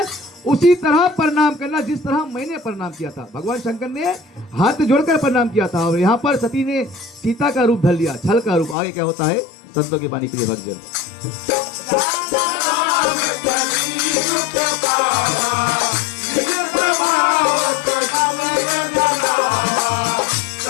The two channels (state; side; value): drops out; right; at 8.8 s